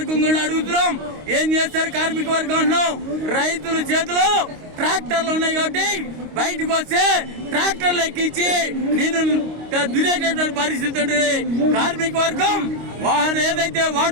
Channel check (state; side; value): late; left; 25 ms